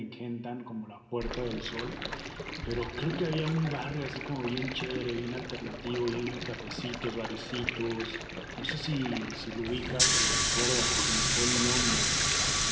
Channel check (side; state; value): both; identical; correlation 1.00